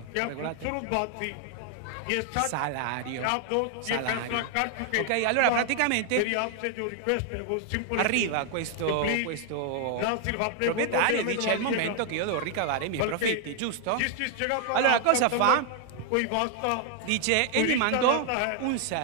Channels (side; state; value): both; different; correlation 0.00